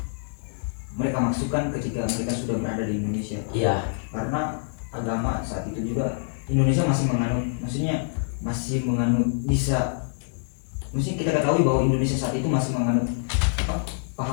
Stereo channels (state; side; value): silent; right; digital silence